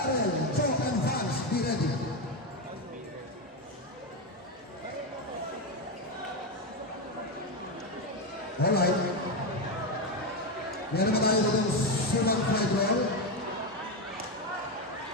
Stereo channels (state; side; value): normal; both; correlation 0.11